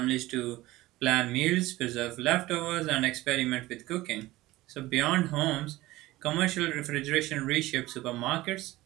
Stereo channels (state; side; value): quieter; left; 18.0 dB